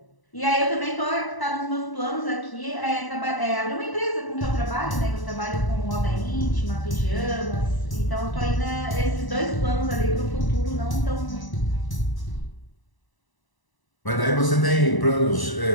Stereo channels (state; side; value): late; right; 1.0 ms